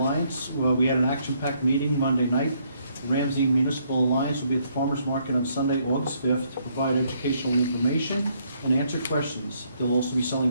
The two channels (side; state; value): both; inverted; correlation -0.71